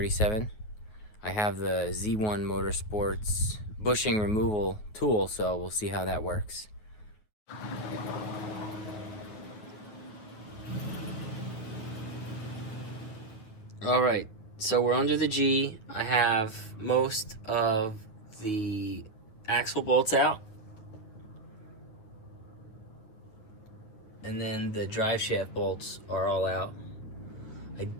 I have the Z1 Motorsports bushing removal tool, so we'll see how that works. Alright, so we're under the G. I have most of the axle bolts out. And then the drive shaft bolts are all out. I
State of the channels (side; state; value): right; late; 9.3 ms